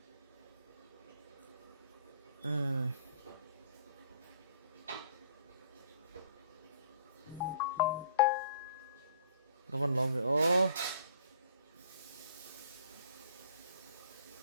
có văn lộn về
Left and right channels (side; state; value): both; inverted; correlation -0.55